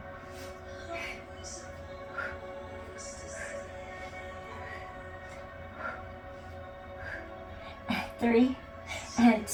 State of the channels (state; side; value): identical; both; correlation 1.00